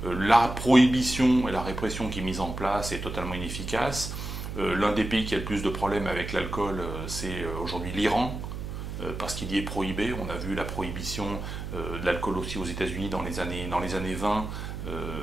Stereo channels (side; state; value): right; noise; hum, 7 dB below the sound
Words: La prohibition et la répression qui est mise en place est totalement inefficace. L'un des pays qui a le plus de problèmes avec l'alcool, c'est aujourd'hui l'Iran, parce qu'il y est prohibé. On a vu la prohibition de l'alcool aussi aux États-Unis dans les années 20.